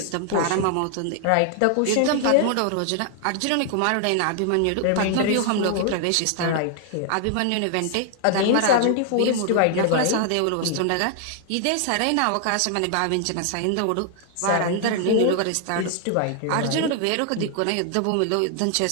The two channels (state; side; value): different; both; correlation 0.00